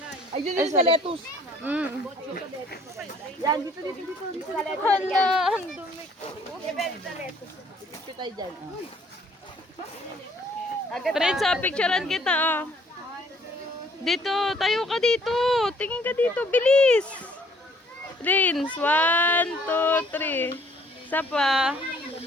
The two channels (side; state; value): both; normal; correlation 0.61